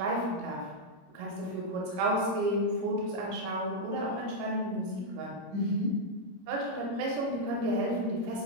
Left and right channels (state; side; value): late; left; 22 ms